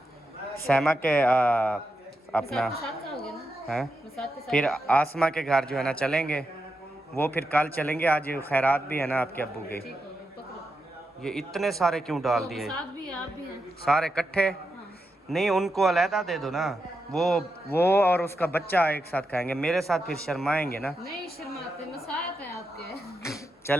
सैमा के अपना है फिर आसमा के घर जो है ना चलेंगे। वो फिर कल चलेंगे, आज खैरात भी है ना आपके अब्बू की। ये इतने सारे क्यों डाल दिए? साथ भी आप भी हैं। सारे इकट्ठे? नहीं उनको अलहदा दे दो ना। वो और उसका बच्चा एक साथ खाएंगे, मेरे साथ फिर शर्माएंगे ना। नहीं शर्माते, मसायत है आपके।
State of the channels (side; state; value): both; normal; correlation 0.86